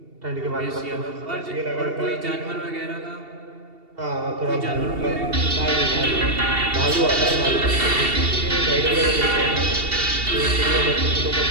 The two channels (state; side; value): late; left; 2.7 ms